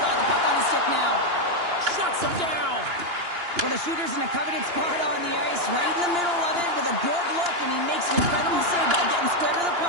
the puck on his stick now. Shuts him down. Well, the shooter's in a coveted spot on the ice, right in the middle of it with a good look, and he makes an incredible save by getting square to the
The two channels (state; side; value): late; left; 2.9 ms